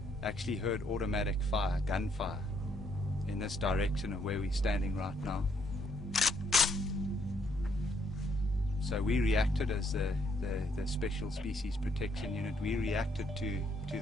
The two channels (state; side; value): normal; both; correlation 0.71